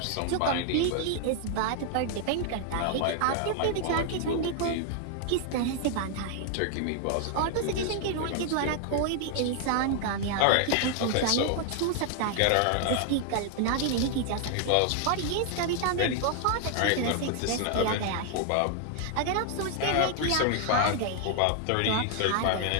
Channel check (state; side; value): different; both; correlation 0.00